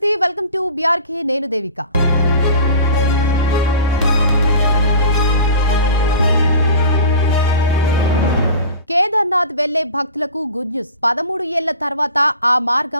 Welcome to BRK. నేను దేవిక. కేదార్నాథ్ వెళ్లే భక్తులకు గుడ్ న్యూస్. 13 ఏళ్ల తర్వాత ఆ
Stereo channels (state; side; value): inverted; both; correlation -0.38